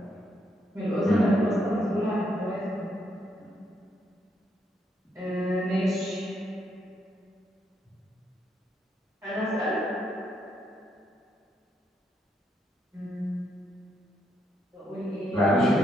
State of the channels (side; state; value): both; normal; correlation 0.77